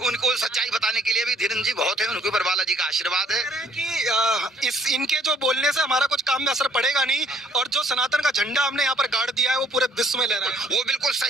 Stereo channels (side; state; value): both; normal; correlation 0.62